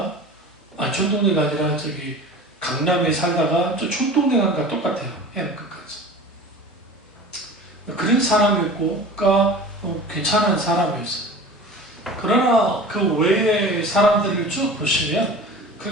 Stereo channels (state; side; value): normal; both; correlation 0.38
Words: 촌동네가 아니라 강남에 살다가 저 촌동네가 똑같아요. 해남 끝까지. 그런 사람이었고, 그러니까 괜찮은 사람이었어요. 그러나 그 외의 사람들을 쭉 보시면